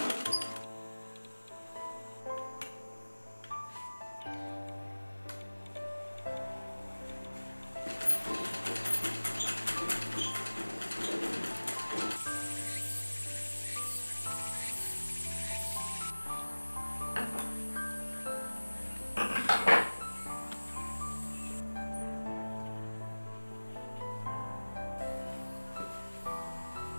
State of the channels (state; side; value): inverted; both; correlation -1.00